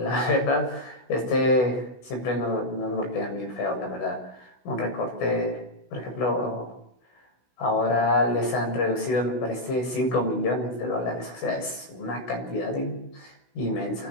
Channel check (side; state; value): right; late; 16 ms